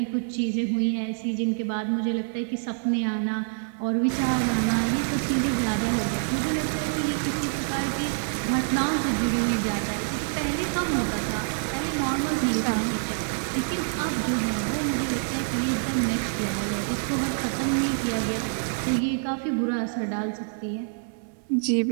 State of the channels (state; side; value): silent; left; digital silence